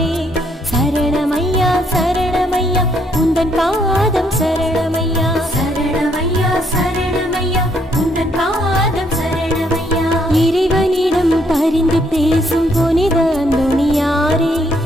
சரணமையா சரணமையா உந்தன் பாதம் சரணமையா, சரணமையா சரணமையா உந்தன் பாதம் சரணமையா. இறைவனிடம் பரிந்து பேசும் புனித அந்தோணியாரே,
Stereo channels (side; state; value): both; normal; correlation 0.70